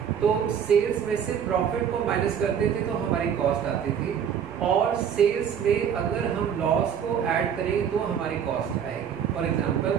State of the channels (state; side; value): quieter; left; 8.2 dB